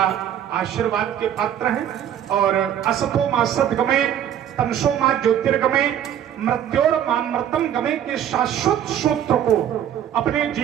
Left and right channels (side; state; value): left; quieter; 10.2 dB